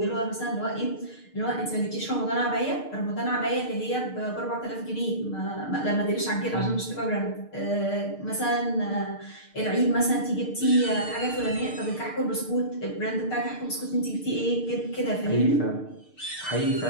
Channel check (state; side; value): late; right; 6.6 ms